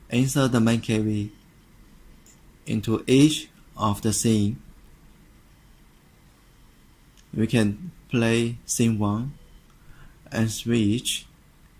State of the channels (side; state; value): both; identical; correlation 1.00